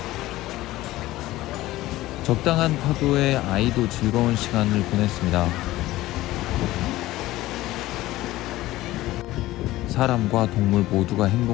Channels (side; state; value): right; quieter; 16.8 dB